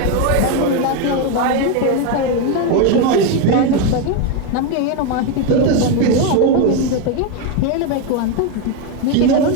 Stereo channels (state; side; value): different; both; correlation 0.02